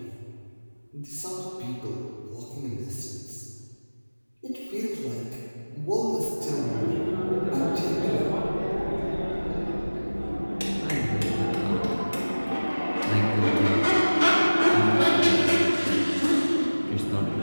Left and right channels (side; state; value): both; inverted; correlation -1.00